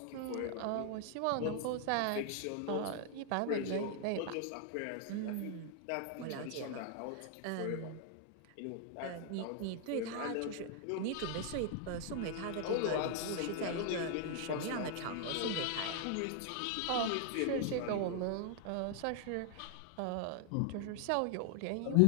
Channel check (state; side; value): different; both; correlation 0.00